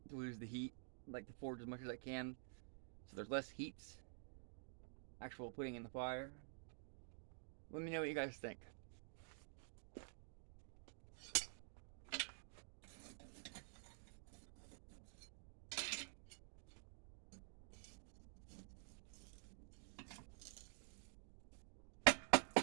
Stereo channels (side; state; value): left; silent; digital silence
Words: to lose the heat. I like to forge as much as I can so there's less heats actual putting in the fire. Let me know what you guys think.